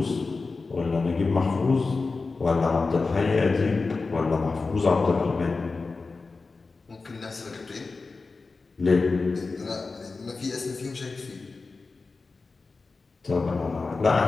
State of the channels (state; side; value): quieter; right; 4.0 dB